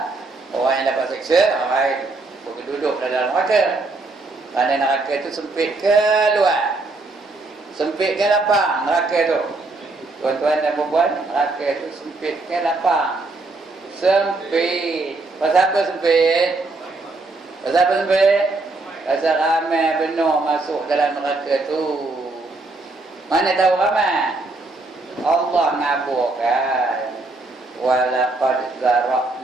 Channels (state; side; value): quieter; left; 3.3 dB